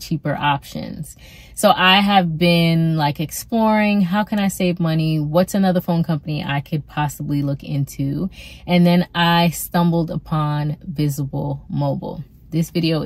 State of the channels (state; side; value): identical; both; correlation 1.00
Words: options? So I have been like exploring, how can I save money, what's another phone company I could possibly look into, and then I stumbled upon Visible Mobile. This video